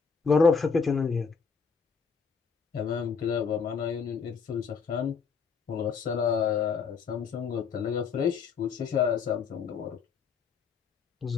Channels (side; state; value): right; quieter; 5.7 dB